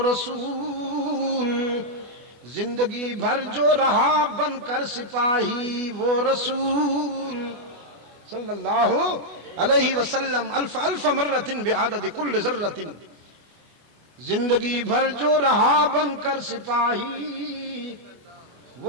زندگی بھر جو رہا بن کر سپاہی وہ رسول صلی اللہ علیہ وسلم، الف الف مرۃ بعدد کل ذرۃ، زندگی بھر جو رہا بن کر سپاہی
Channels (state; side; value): late; left; 24 ms